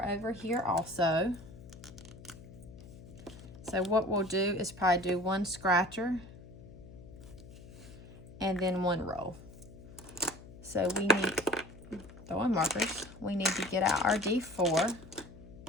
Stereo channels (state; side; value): noise; left; hum, 17 dB below the sound